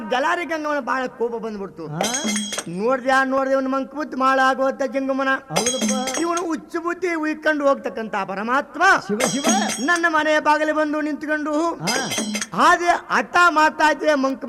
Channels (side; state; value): both; identical; correlation 1.00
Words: ಜಲಾರಿ ಗಂಗಮ್ಮನ ಬಹಳ ಕೋಪ ಬಂದ್ಬಿಡ್ತು ನೋಡ್ದೆ ಒಂದು ಮಂಕ ಬುದ್ಧಿ ಮಾಳಾಗೋತ ಜಂಗಮನ ಹೌದಪ್ಪ ಇವನು ಹುಚ್ಚು ಬುದ್ಧಿ ಉಯ್ಕೊಂಡು ಹೋಗ್ತಕ್ಕಂತ ಪರಮಾತ್ಮ ಶಿವ ಶಿವ ನನ್ನ ಮನೆ ಬಾಗಿಲು ಬಂದು ನಿಂತ್ಕೊಂಡು ಹಾಗೆ ಹಠ ಮಾಡ್ತಾ ಇದ್ದೆ ಮಂಕ್